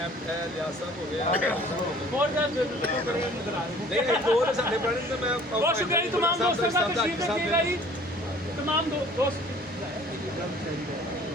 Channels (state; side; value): normal; both; correlation 0.52